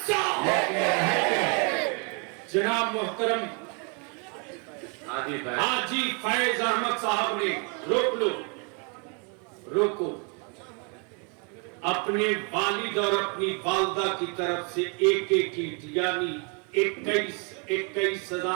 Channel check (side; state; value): left; quieter; 35.7 dB